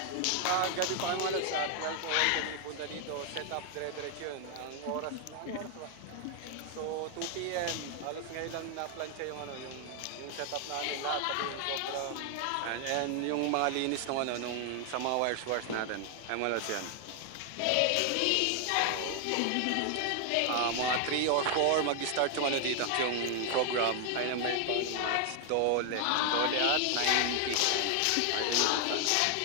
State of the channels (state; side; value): different; both; correlation 0.00